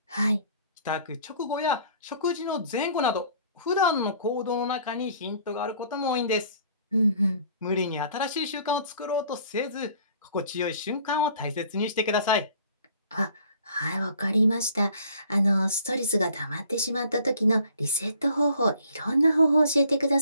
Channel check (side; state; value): both; inverted; correlation -0.55